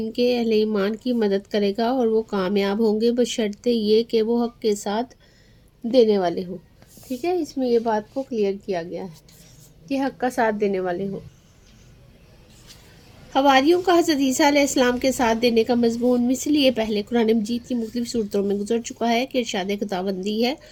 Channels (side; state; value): both; identical; correlation 1.00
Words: کے اہل ایمان کی مدد کرے گا اور وہ کامیاب ہوں گے بشرطے یہ کہ وہ حق کے ساتھ دینے والے ہوں۔ ٹھیک ہے، اس میں یہ بات کو کلیئر کیا گیا ہے کہ حق کا ساتھ دینے والے ہوں۔ حواریوں کا حضرت عیسیٰ علیہ السلام کے ساتھ دینے کا مضمون مثل یہ پہلے قرآن مجید کی مختلف صورتوں میں گزر چکا ہے کہ ارشاد خداوندی ہے،